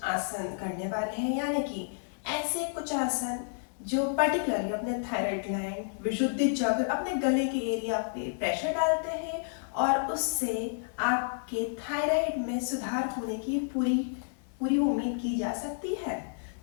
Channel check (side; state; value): right; silent; 57 dB below the other